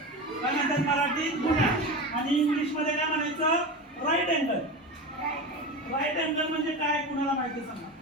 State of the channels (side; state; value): both; normal; correlation 0.25